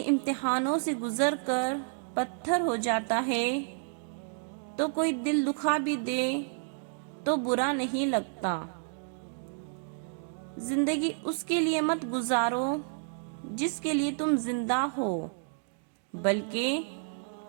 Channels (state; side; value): silent; left; digital silence